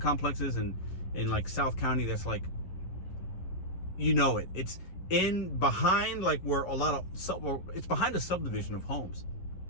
complexes in like South County that's like, you know it. It's behind like where it's behind a subdivision of homes.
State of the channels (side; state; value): right; late; 11 ms